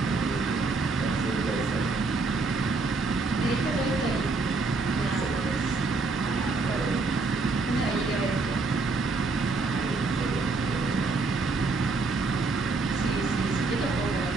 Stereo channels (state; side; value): quieter; left; 3.7 dB